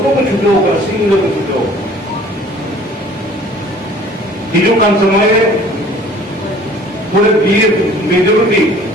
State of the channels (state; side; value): normal; both; correlation 0.51